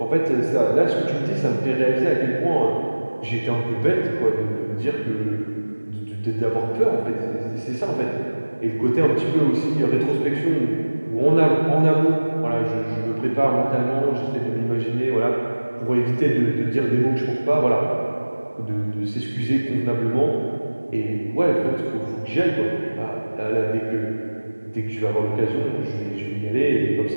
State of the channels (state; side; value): inverted; both; correlation -1.00